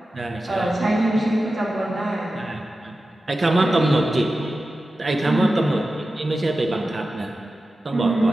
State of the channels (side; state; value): both; normal; correlation 0.93